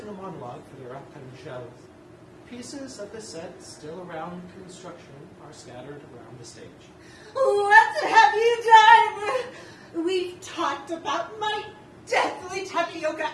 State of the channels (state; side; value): identical; both; correlation 1.00